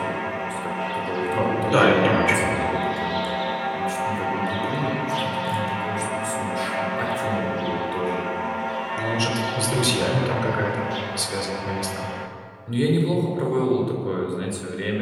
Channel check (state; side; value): identical; both; correlation 1.00